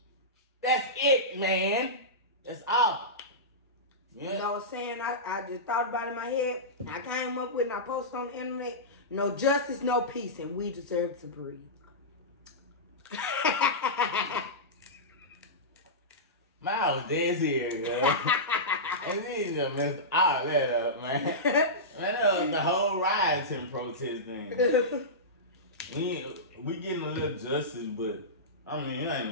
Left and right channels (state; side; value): normal; both; correlation -0.16